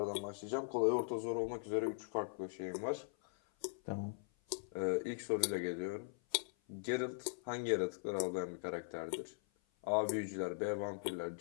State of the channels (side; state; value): right; silent; 51 dB below the other